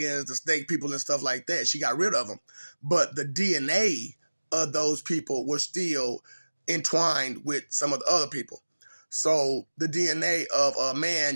the snake people and stuff like that. She got rid of them. But the DNA of those people were still entwined with some of the other people. So the DNA of a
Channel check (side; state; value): both; inverted; correlation -1.00